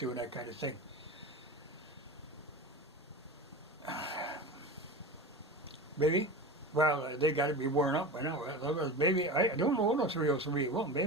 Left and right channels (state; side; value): normal; both; correlation 0.29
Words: that kind of thing. Maybe? Well, they got to be worn up by now. Maybe, I don't own a 303. Well,